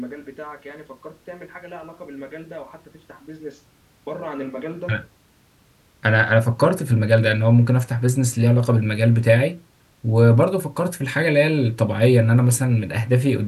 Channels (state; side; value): identical; both; correlation 1.00